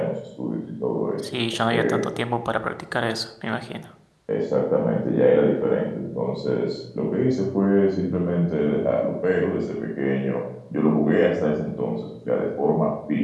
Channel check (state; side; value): identical; both; correlation 1.00